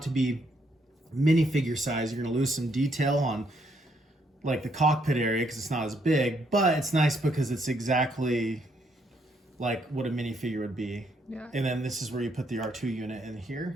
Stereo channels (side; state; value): both; normal; correlation 0.72